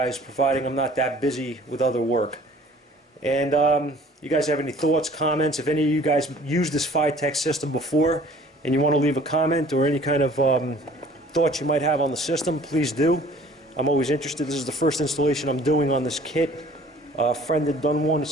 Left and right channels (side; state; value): both; normal; correlation 0.52